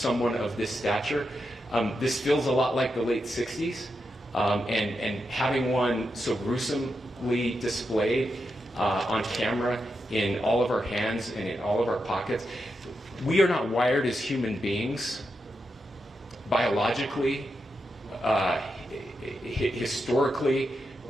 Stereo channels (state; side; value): normal; both; correlation 0.86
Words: of this stature, this feels a lot like the late 60s. And having one so gruesomely displayed on camera in all of our hands and in all of our pockets, we are not wired as human beings biologically, historically.